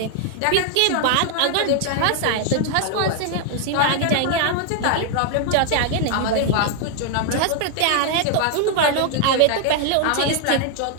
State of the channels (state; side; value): different; both; correlation 0.00